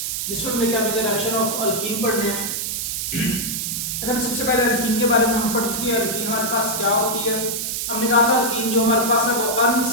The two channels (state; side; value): noise; right; hiss, 2 dB below the sound